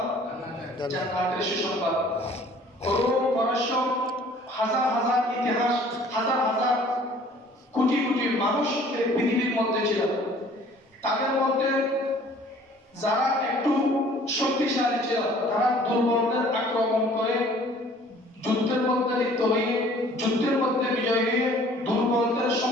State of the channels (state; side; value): normal; both; correlation 0.53